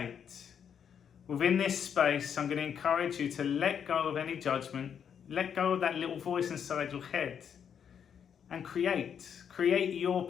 Within this space, I'm going to encourage you to let go of any judgment, let go of that little voice inside your head and create your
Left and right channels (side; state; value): right; quieter; 7.9 dB